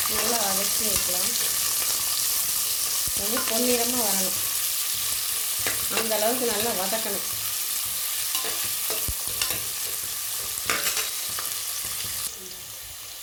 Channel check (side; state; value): both; identical; correlation 1.00